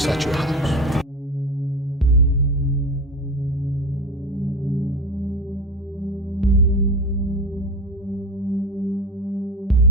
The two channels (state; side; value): normal; both; correlation 0.26